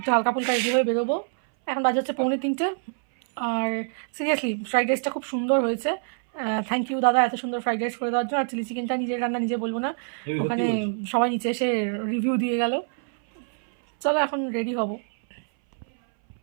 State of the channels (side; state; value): left; silent; 60 dB below the other